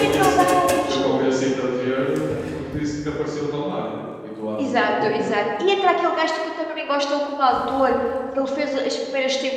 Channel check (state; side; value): identical; both; correlation 1.00